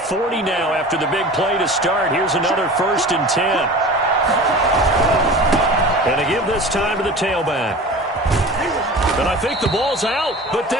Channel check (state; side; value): normal; both; correlation 0.37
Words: now after the big play to start. Here's another 1st and 10. And to give this time to the tailback. And I think the ball's out, but